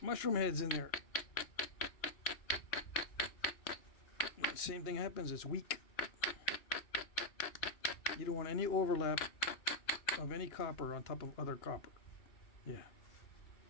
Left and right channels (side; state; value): right; late; 2.7 ms